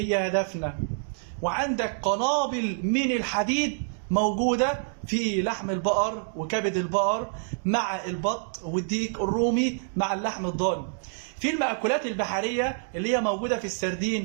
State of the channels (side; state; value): left; silent; 57 dB below the other